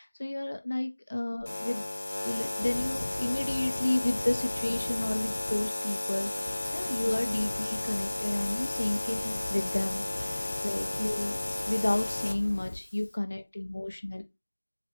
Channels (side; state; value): both; inverted; correlation -1.00